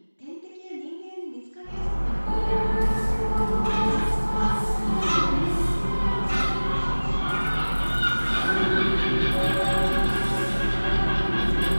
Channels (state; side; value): inverted; both; correlation -1.00